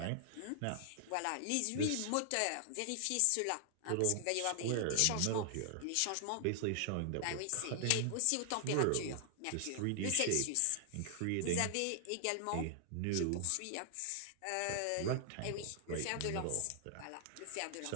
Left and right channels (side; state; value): both; different; correlation 0.00